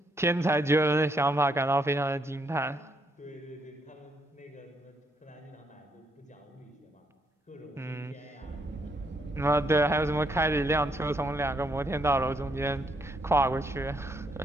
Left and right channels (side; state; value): both; normal; correlation 0.74